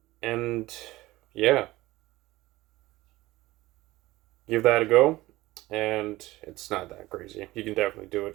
And yeah, give that a go. And it's not that crazy. You can definitely do it.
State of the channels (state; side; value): quieter; left; 18.5 dB